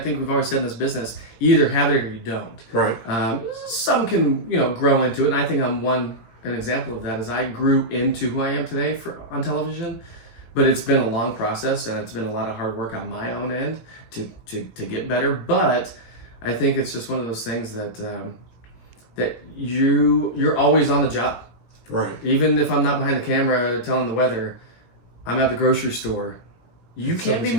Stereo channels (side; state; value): right; late; 18 ms